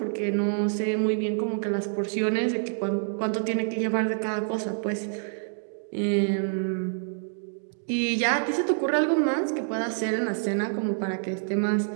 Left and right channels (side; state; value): left; silent; digital silence